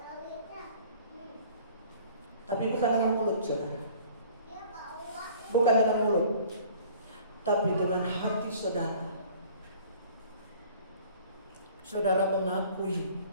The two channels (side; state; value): both; inverted; correlation -0.51